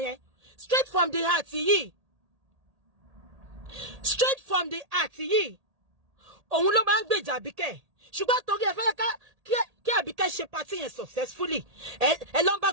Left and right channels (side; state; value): left; late; 1.8 ms